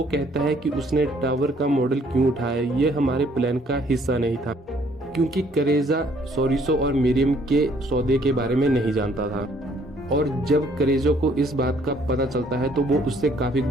कहता है कि उसने टावर का मॉडल क्यों उठाया, ये हमारे प्लान का हिस्सा नहीं था, क्योंकि क्रेजा सॉरिसो और मरियम के सौदे के बारे में नहीं जानता था। और जब क्रेजो को इस बात का पता चलता है तो वो उससे काफी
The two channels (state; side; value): normal; both; correlation 0.63